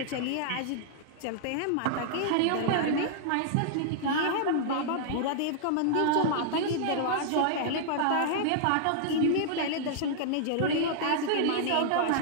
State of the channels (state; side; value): different; both; correlation -0.01